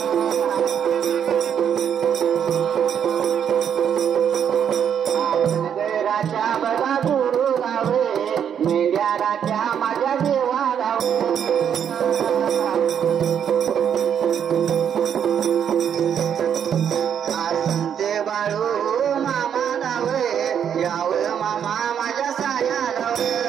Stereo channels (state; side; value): quieter; left; 8.5 dB